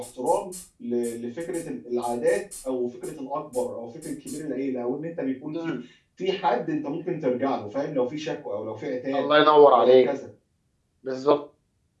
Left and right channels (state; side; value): identical; both; correlation 1.00